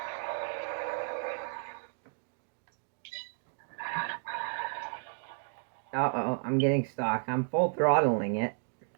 Uh-oh, I'm getting stuck. I'm full throttling it.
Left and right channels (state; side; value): silent; left; digital silence